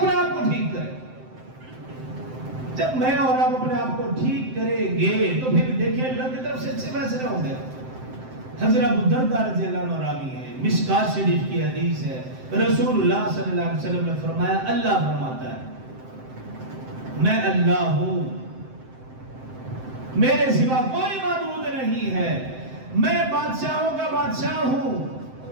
آپ کو ٹھیک کریں۔ جب میں اور آپ اپنے آپ کو ٹھیک کریں گے تو پھر دیکھیں اللہ کی طرف سے اچھے فیصلے ہوں گے۔ حضرت ابو درداء رضی اللہ عنہ راوی ہے، مشکات شریف کی حدیث ہے، رسول اللہ صلی اللہ علیہ وسلم نے فرمایا، اللہ فرماتا ہے میں اللہ ہوں، میرے سوا کوئی معبود نہیں ہے، میں بادشاہوں کا بادشاہ ہوں،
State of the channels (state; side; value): late; left; 7.7 ms